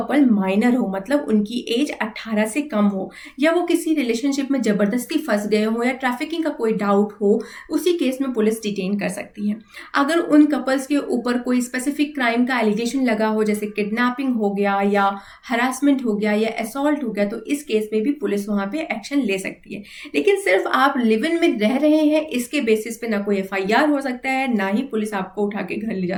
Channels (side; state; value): both; identical; correlation 1.00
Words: माइनर हो, मतलब उनकी एज 18 से कम हो, या वो किसी रिलेशनशिप में जबरदस्ती फंस गए हो, या ट्रैफिकिंग का कोई डाउट हो, उसी केस में पुलिस डिटेन कर सकती है। अगर उन कपल्स के ऊपर कोई स्पेसिफिक क्राइम का एलिगेशन लगा हो, जैसे किडनैपिंग हो गया या हरासमेंट हो गया या असॉल्ट हो गया, तो इस केस में भी पुलिस वहां पे एक्शन ले सकती है। लेकिन सिर्फ आप लिव इन में रह रहे हैं इसके बेसिस पे ना कोई FIR हो सकता है, ना ही पुलिस आपको उठा के घर ले जा